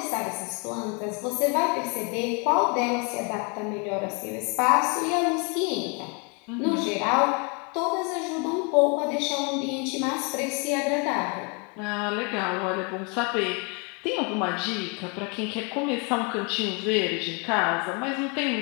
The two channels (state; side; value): quieter; right; 33.9 dB